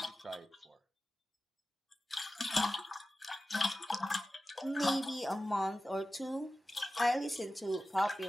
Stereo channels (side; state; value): both; normal; correlation 0.95